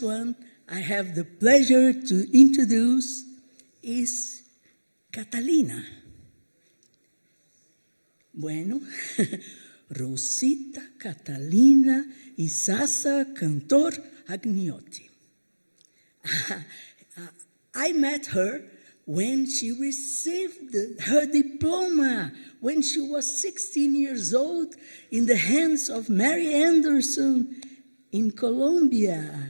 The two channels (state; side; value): inverted; both; correlation -1.00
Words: one I have the pleasure to introduce is Catalina. Bueno, Rosita Catalina Isaza-Cantor Agniotti. I met her when she received her diploma, when she was 16 years old, in the hands of Mary Anderson in